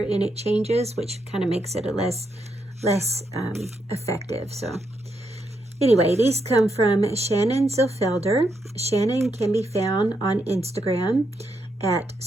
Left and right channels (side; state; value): both; normal; correlation 0.80